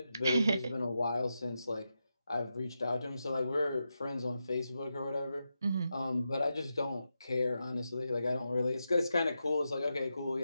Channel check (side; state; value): both; inverted; correlation -0.88